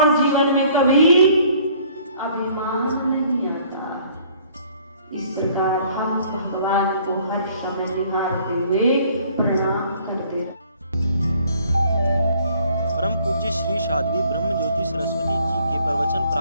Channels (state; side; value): inverted; both; correlation -0.58